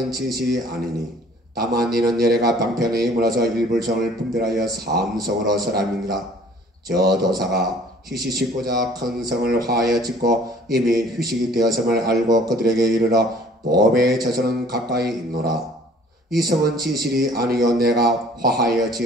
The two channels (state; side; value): normal; both; correlation 0.54